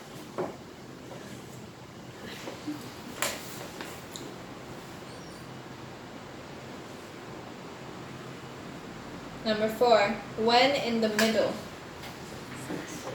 Number 4, when in the middle.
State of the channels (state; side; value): identical; both; correlation 1.00